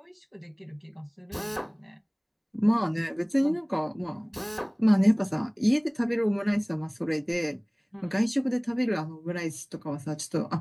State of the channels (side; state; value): both; identical; correlation 1.00